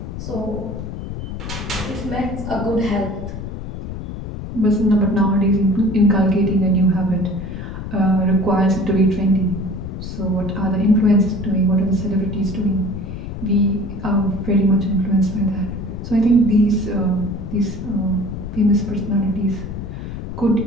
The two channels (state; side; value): noise; left; rumble, 8 dB below the sound